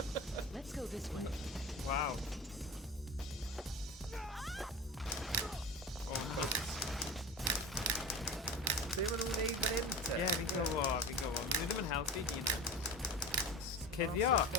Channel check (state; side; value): normal; both; correlation 0.30